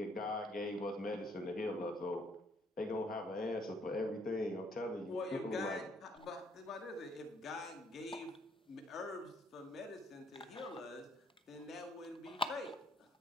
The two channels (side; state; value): both; normal; correlation 0.66